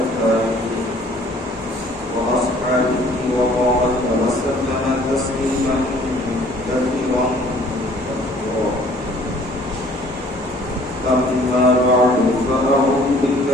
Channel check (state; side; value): normal; both; correlation 0.56